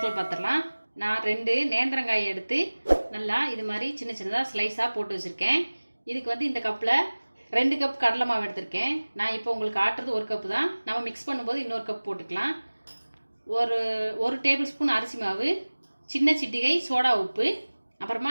பார்த்துடலாம். நான் 2 நேந்திரங்காயை எடுத்து நல்லா இது மாதிரி சின்ன சின்னதாக ஸ்லைஸாக போட்டு வச்சுருக்கேன். இதுக்கு இந்த கப்பில் 2 கப் கடலை மாவு எடுத்திருக்கேன். நான் இப்போ உங்களுக்கு ஆட்டுறது 1 கப்பு தான். நம்ம மிக்ஸ் பண்ணும்போது இன்னொரு கப் போட்டுக்கலாம். ஒரு டேபிள் ஸ்பூன் அரிசி மாவு, சின்ன சிட்டிகை சோடா உப்பு, அப்புறமா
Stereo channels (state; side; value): inverted; both; correlation -1.00